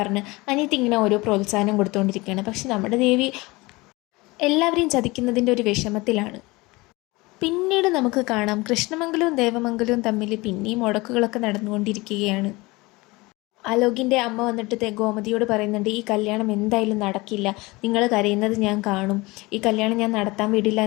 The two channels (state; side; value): quieter; right; 22.8 dB